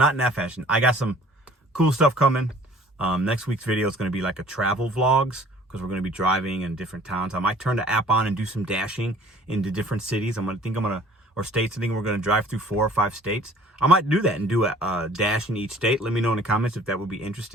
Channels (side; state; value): both; normal; correlation 0.52